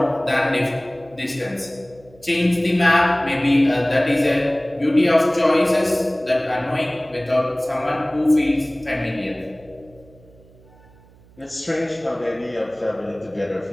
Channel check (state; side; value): noise; right; hum, 26 dB below the sound